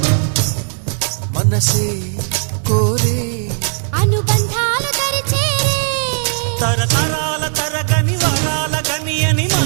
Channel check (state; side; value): silent; left; 68 dB below the other